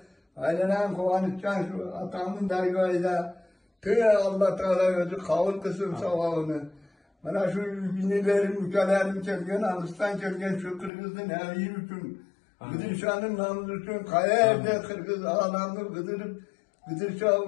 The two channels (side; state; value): right; drops out; at 10.9 s